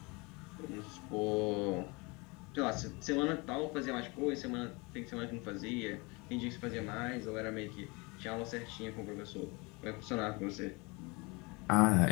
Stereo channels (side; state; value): right; quieter; 27.5 dB